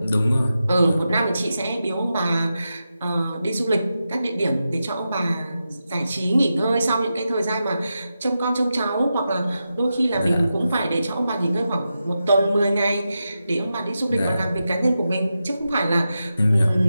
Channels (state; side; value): inverted; both; correlation -0.90